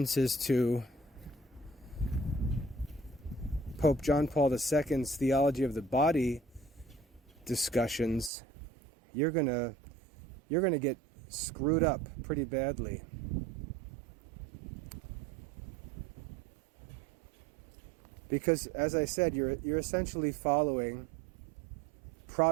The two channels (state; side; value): drops out; left; at 8.3 s